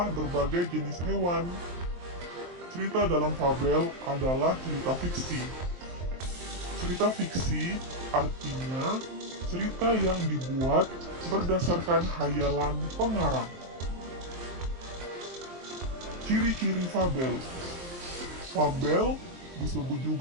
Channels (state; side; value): late; left; 23 ms